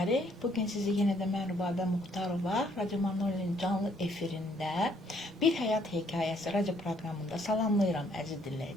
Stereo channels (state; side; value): normal; both; correlation 0.67